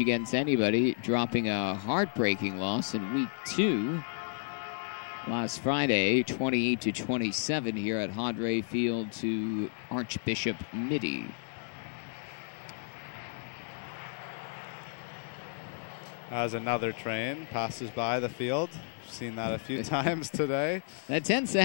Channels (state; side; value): silent; right; 56 dB below the other